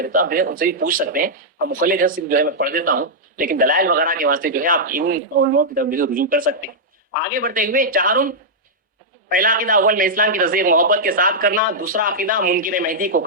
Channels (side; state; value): both; normal; correlation -0.08